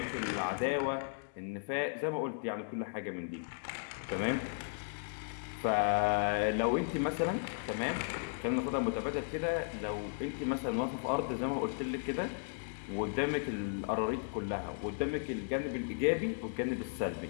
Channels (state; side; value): silent; right; digital silence